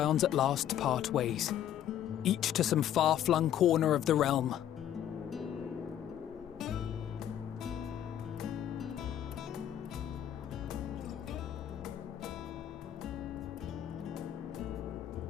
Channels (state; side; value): quieter; right; 10.8 dB